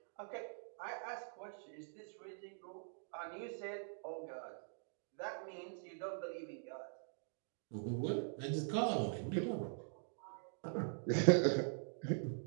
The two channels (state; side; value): silent; left; digital silence